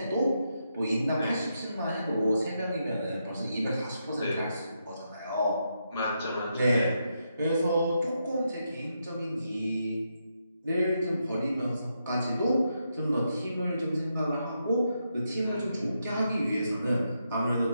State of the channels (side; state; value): both; inverted; correlation -0.82